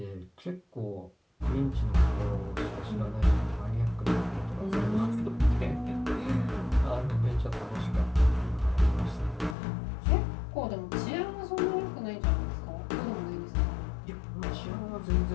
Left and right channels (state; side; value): drops out; right; at 9.6 s